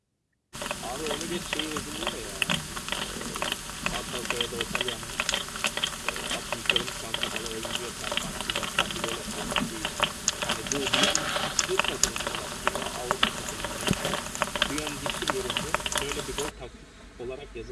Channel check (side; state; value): both; identical; correlation 1.00